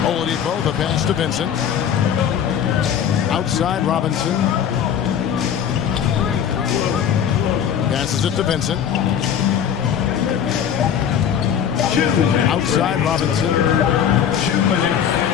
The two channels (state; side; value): quieter; right; 8.7 dB